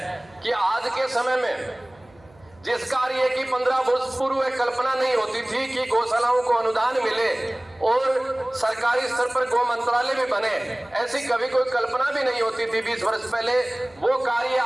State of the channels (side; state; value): right; noise; hum, 28 dB below the sound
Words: कि आज के समय में जिस कार्य की 15 वर्ष पूर्व कल्पना नहीं होती थी कि गौशालाओं को अनुदान मिले और सरकारी स्तर पर गौ मंत्रालय भी बने, ऐसी कभी कोई कल्पना भी नहीं होती थी 20 वर्ष पहले, वो कार्य